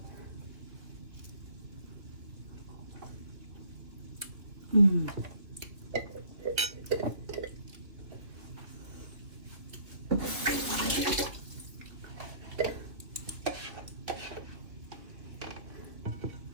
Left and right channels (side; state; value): left; late; 2.3 ms